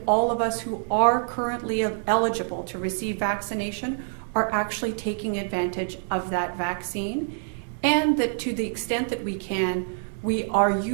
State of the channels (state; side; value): silent; left; digital silence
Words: all of us who are currently eligible to receive vaccination are actually taking advantage of that vaccine, and that to the extent that we can, we are